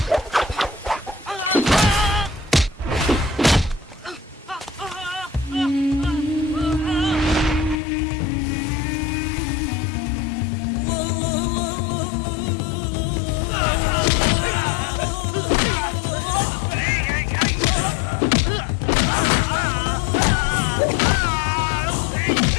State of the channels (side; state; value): right; drops out; at 7.8 s